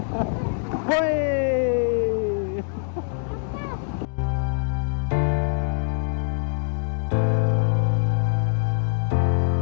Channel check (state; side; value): silent; right; digital silence